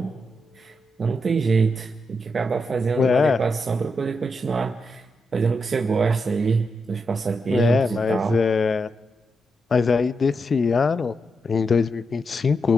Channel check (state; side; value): normal; both; correlation 0.84